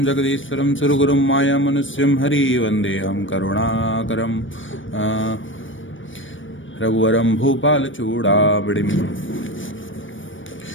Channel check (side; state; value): right; late; 0.56 ms